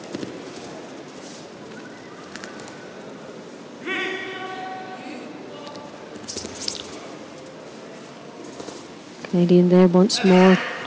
Canadian there once more,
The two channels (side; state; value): both; identical; correlation 1.00